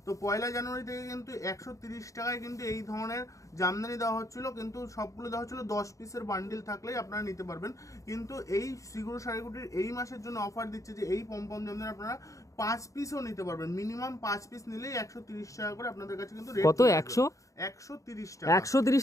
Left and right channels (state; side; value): late; right; 0.16 ms